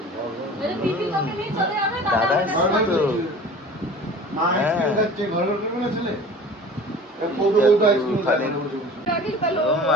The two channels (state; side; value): normal; both; correlation 0.41